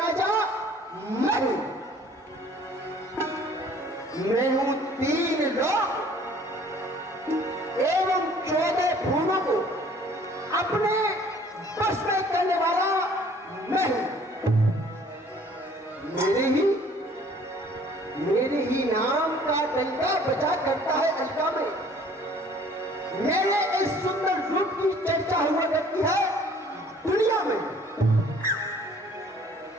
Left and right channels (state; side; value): normal; both; correlation 0.55